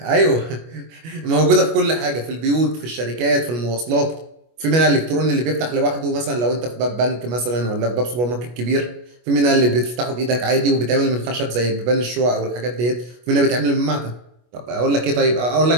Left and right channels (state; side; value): late; left; 25 ms